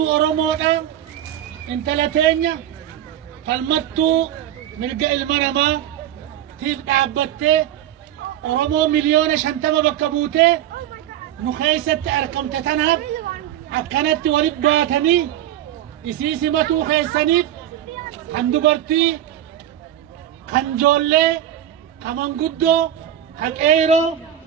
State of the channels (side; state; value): left; quieter; 11.6 dB